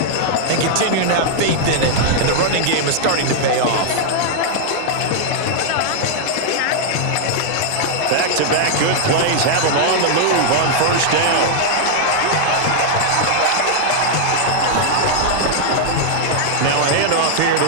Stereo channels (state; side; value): different; both; correlation -0.01